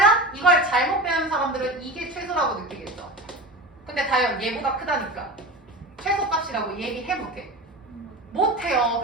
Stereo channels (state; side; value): normal; both; correlation 0.30